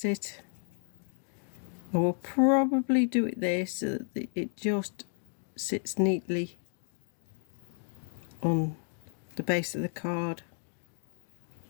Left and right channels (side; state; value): right; silent; 56 dB below the other